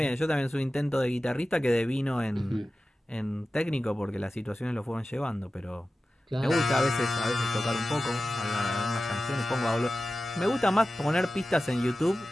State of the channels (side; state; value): both; normal; correlation 0.95